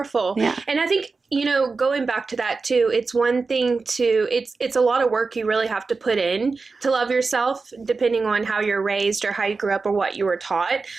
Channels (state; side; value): quieter; left; 4.2 dB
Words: Yeah. And I think, going back to that too, it's one thing it's a lot of work you really have to put in to love yourself, depending on how you're raised or how you grew up or what you were taught.